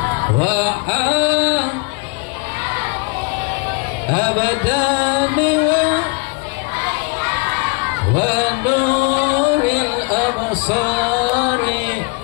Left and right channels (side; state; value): right; quieter; 32.0 dB